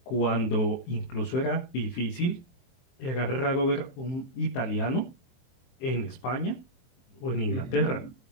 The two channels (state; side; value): late; right; 23 ms